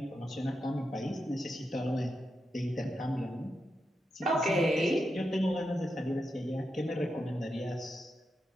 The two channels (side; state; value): both; normal; correlation 0.87